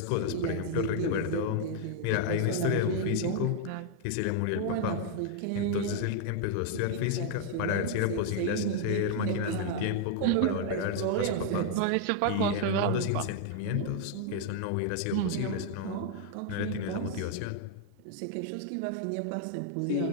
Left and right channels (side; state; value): both; different; correlation 0.00